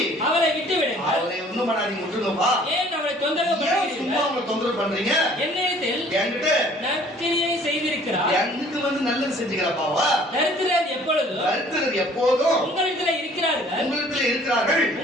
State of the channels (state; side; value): normal; both; correlation 0.55